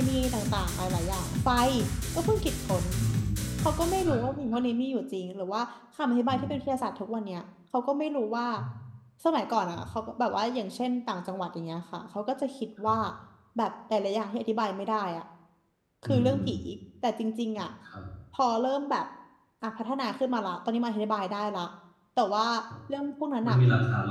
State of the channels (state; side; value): identical; both; correlation 1.00